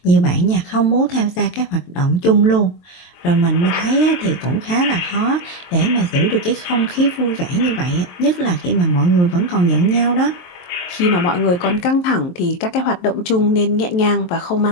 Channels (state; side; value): late; right; 23 ms